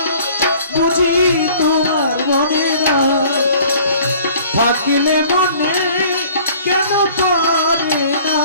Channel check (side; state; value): both; inverted; correlation -0.52